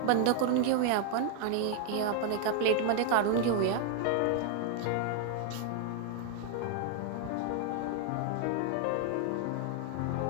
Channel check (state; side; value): different; both; correlation 0.00